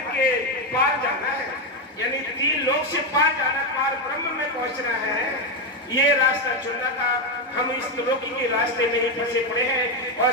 के पार जाना है, यानी 3 लोक से पार जाना, पार ब्रह्म में पहुंचना है। ये रास्ता चुनना था। हम इस त्रिलोकी के रास्ते में ही फंसे पड़े हैं और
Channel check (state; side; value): normal; both; correlation 0.07